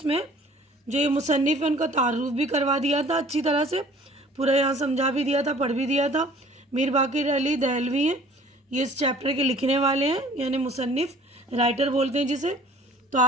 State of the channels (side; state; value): both; normal; correlation 0.51